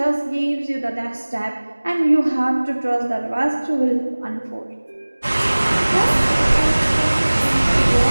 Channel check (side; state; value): both; inverted; correlation -1.00